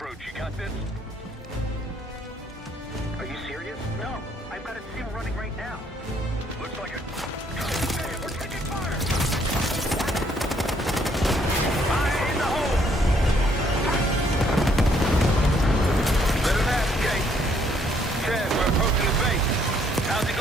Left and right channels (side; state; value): both; normal; correlation 0.67